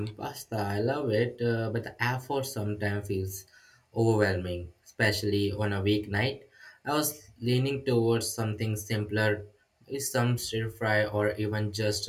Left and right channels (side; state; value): both; identical; correlation 1.00